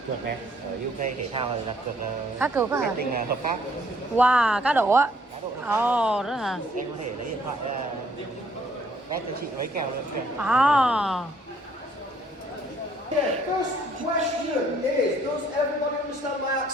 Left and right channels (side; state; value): both; normal; correlation 0.64